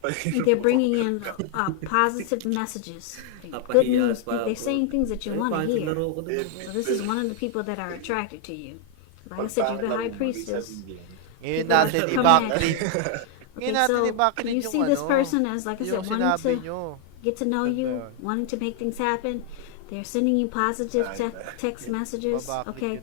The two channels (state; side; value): different; both; correlation 0.00